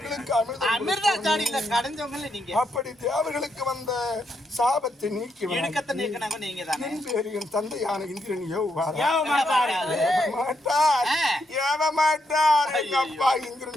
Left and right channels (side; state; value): both; normal; correlation 0.79